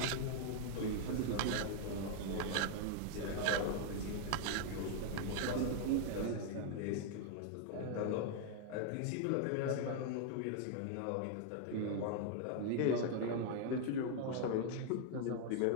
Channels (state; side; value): different; both; correlation 0.00